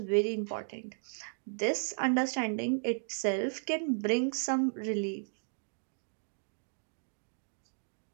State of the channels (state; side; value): silent; left; digital silence